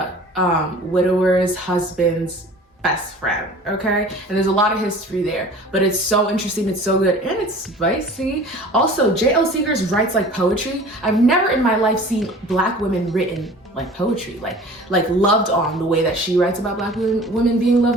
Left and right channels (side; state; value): both; normal; correlation 0.44